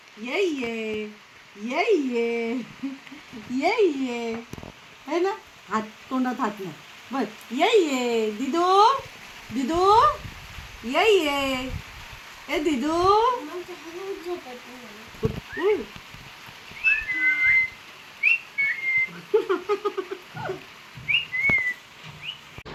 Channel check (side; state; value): both; identical; correlation 1.00